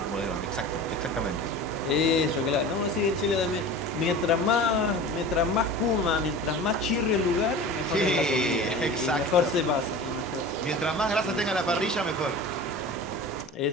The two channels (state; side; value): normal; both; correlation 0.35